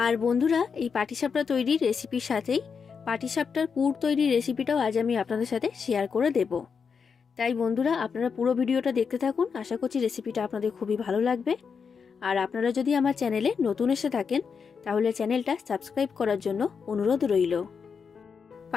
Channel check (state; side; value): quieter; right; 6.0 dB